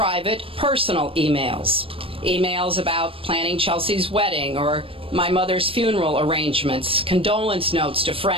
personal emails. Emails about planning Chelsea's wedding or my mother's funeral arrangements, condolence notes to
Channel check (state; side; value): late; left; 0.27 ms